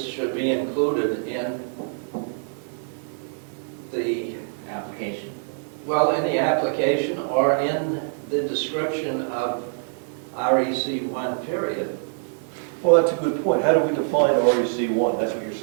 should be included in the, application. in the application or in the description of REC 1 period. Well, that's a good point. How do we define REC 1? That's what you're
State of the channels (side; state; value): left; silent; digital silence